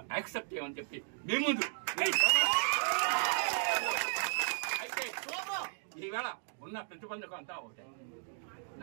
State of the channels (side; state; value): left; silent; digital silence